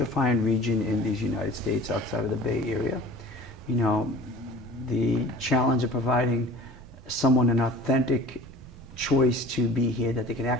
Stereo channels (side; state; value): both; normal; correlation 0.43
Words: region in these United States outside of the Bay Area. You know, the challenge of providing someone an authentic choice to be here, that they can